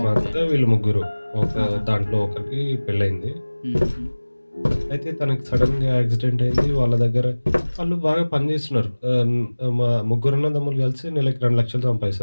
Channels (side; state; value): both; inverted; correlation -1.00